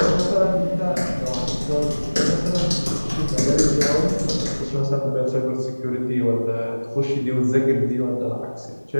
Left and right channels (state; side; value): inverted; both; correlation -1.00